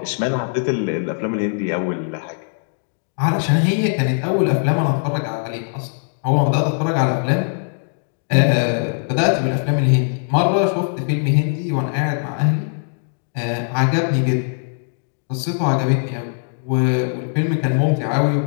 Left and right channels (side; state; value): right; silent; digital silence